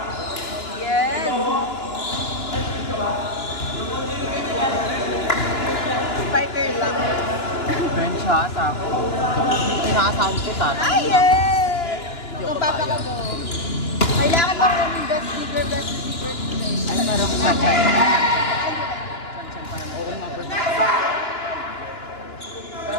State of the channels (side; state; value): right; late; 2.9 ms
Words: Yes. Spiker lang. Bench ha, sa ako. Pinakasahan ko sa atin. Ay, yes! Kung papakabo. Kailangan mo yung best secret. Ano meron ko sa China? Chan-chan pa naman.